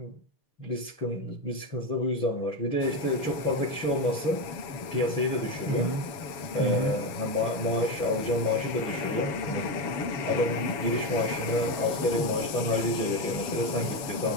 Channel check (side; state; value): right; late; 7.1 ms